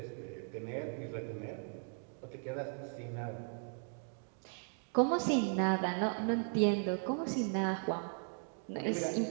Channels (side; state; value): left; silent; 53 dB below the other